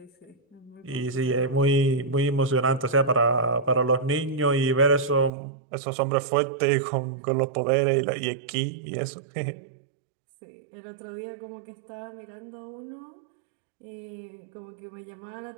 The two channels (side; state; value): left; drops out; at 5.3 s